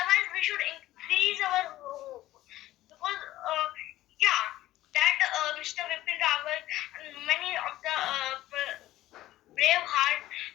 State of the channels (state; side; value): quieter; right; 15.3 dB